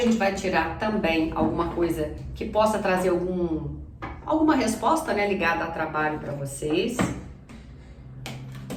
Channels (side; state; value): both; identical; correlation 1.00